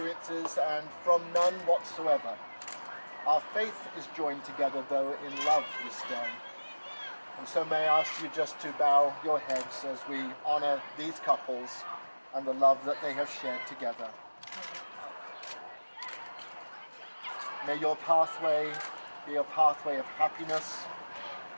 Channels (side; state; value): both; inverted; correlation -1.00